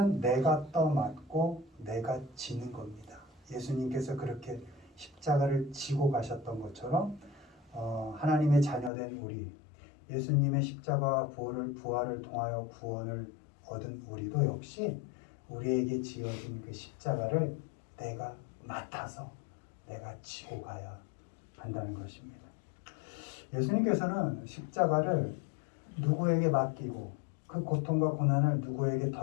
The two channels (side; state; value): right; drops out; at 8.9 s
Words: 내가 떠맞고 내가 지는 겁니다. 예수님께서 그렇게 십자가를 지고 가셨던 것처럼 하나님의 자녀된 우리, 예수님의 십자가와 부활을 통하여 구원을 얻은 우리도 역시 우리에게 지어진 그 십자가를 내가 맡아서 내가 지고 가야 한다는 것입니다. 예수님께서는 십자가를 누구에게 맡기고 그 고통과 고난을 누구에게